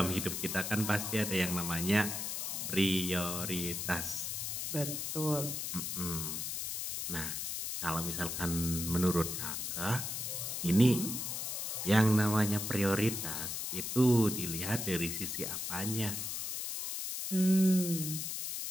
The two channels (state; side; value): noise; left; hiss, 3 dB below the sound